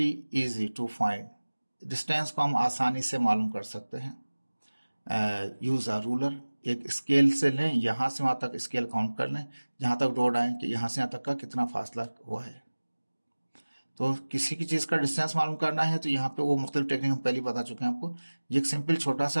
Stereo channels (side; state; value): both; inverted; correlation -1.00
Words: easy to find. Distance को हम आसानी से मालूम कर सकते हैं। यूज़ अ रूलर, एक स्केल से लें, यहाँ से वहाँ तक स्केल काउंट कर लें, जहाँ तक डॉट आए कि यहाँ से यहाँ तक का कितना फासला हुआ है। तो किसी की चीज़ का डिस्टेंस मालूम करना है तो यहाँ पे वो मुख्तलिफ टेक्निक हम पहले ही बता चुके हैं आपको। ये एक सिंपल छोटा